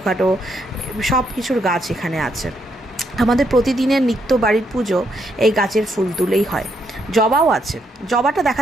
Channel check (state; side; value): normal; both; correlation 0.76